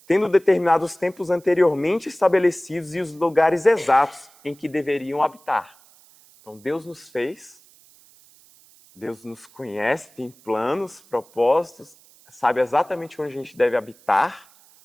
tendo determinado os tempos anteriormente estabelecidos e os lugares exatos em que deveriam habitar. Então Deus nos fez, Deus nos conhece, tem planos, propósitos, sabe exatamente onde a gente deve habitar,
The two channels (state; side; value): noise; right; hiss, 27 dB below the sound